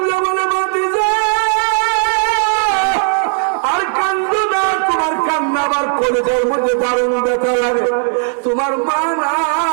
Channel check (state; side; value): silent; left; 57 dB below the other